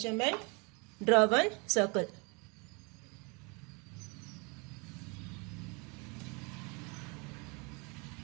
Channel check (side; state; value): left; quieter; 31.2 dB